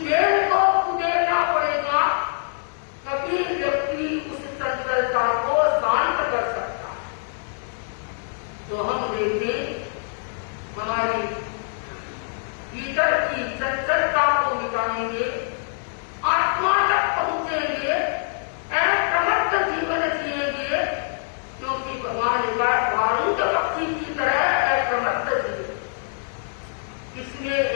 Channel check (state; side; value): silent; right; digital silence